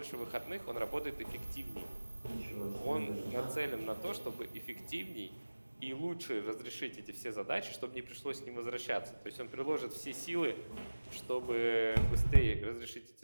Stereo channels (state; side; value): inverted; both; correlation -1.00